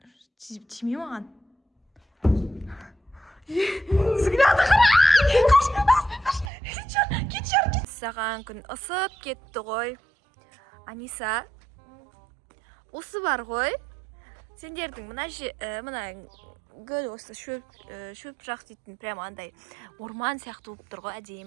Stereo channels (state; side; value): drops out; left; at 6.5 s